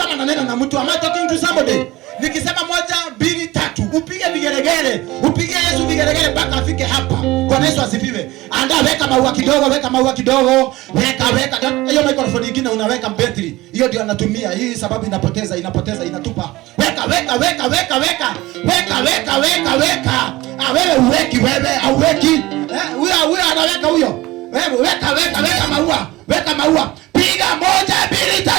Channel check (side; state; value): left; quieter; 19.0 dB